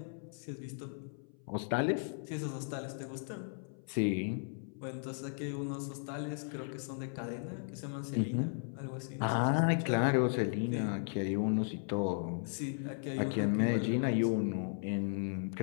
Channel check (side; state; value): right; silent; 54 dB below the other